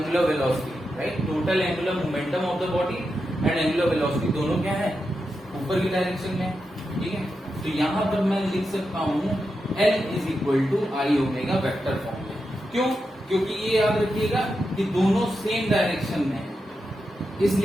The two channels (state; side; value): normal; both; correlation 0.88